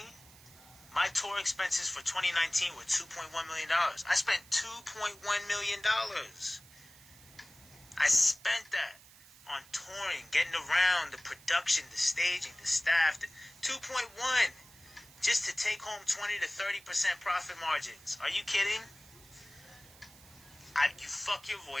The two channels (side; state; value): right; noise; hiss, 22 dB below the sound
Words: My tour expenses for 2019 were $2.1 million. I spent $2.1 million. I spent that on touring, getting around, the production, the staging, the staff. 2.1 just to take home 20 to 30% profit margins. Are you kidding? You fuck your